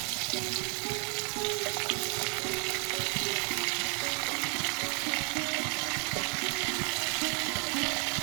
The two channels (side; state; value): left; quieter; 35.5 dB